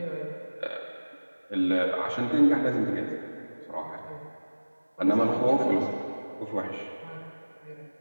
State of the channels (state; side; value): inverted; both; correlation -1.00